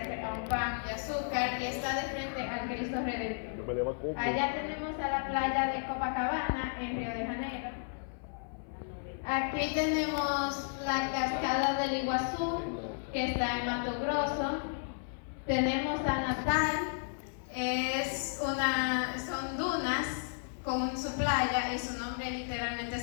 a un pan de azúcar y está de frente al Cristo Redentor. Allá tenemos a la playa de Copacabana en Río de Janeiro. Aquí tenemos la cascada del Iguazú, que está en Mato Grosso. Tenemos a Natal, son dunas con su playa y su nombre literalmente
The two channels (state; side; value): silent; right; 55 dB below the other